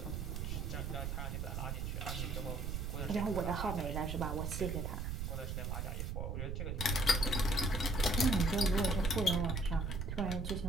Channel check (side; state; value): right; noise; rumble, 2 dB below the sound